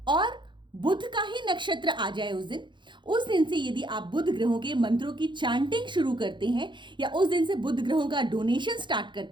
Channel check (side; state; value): left; late; 0.23 ms